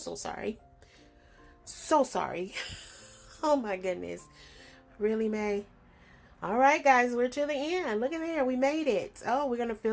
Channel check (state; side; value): identical; both; correlation 1.00